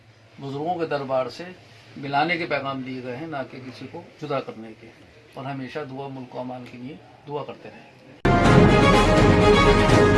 बुज़ुर्गों के दरबार से मिलाने के पैगाम दिए गए हैं, ना कि किसी को जुदा करने के। और हमेशा दुआ मुल्क को अमान के लिए दुआ करते रहें।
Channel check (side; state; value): both; identical; correlation 1.00